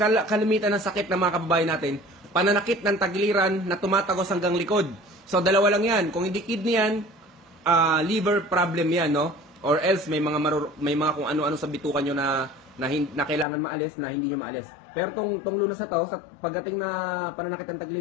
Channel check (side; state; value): right; drops out; at 13.5 s